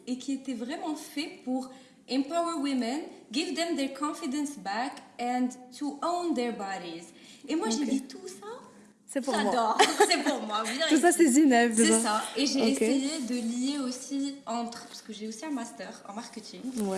et qui était vraiment fait pour empower women, give them their confidence back and to own their bodies. Et moi, j'ai dit tout ça. C'est pour J'adore. moi. C'est pour moi. Tout ça, c'est Zineb. C'est ça. Et j'ai essayé de lier aussi parce que j'ai aussi un master en marketing.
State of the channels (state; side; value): identical; both; correlation 1.00